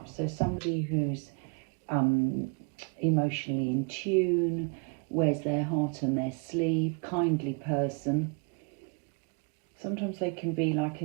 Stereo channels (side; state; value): left; quieter; 34.9 dB